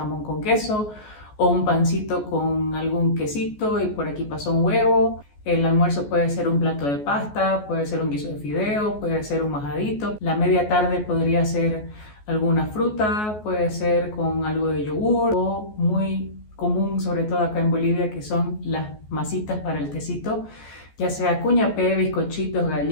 con queso o un pancito con algún quesito y por aquí pasó un huevo. El almuerzo puede ser un plato de pasta, puede ser un guiso de fideo, puede ser un majadito. La media tarde podría ser alguna fruta, puede ser con algo de yogur o muy común, sobre todo acá en Bolivia, que son las masitas para el tecito, ya sea cuñapé, bizcochitos,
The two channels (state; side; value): late; right; 14 ms